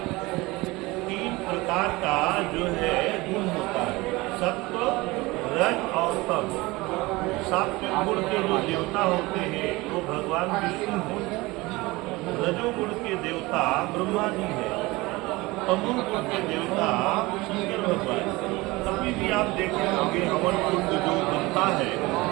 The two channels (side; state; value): left; quieter; 21.8 dB